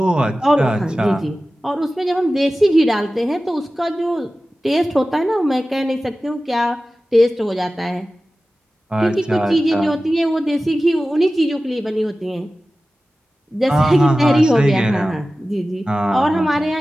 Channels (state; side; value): normal; both; correlation 0.96